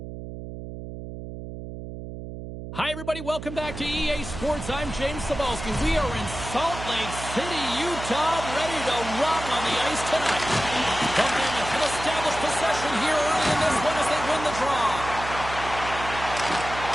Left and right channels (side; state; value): right; noise; hum, 9 dB below the sound